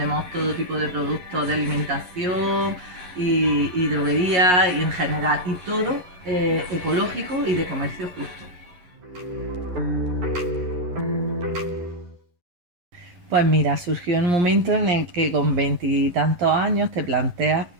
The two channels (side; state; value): left; late; 11 ms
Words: todo tipo de productos de alimentación y droguería y en general, y todo ecológico y de comercio justo. Pues mira, surgió en un momento en el que con veintitantos años te planteas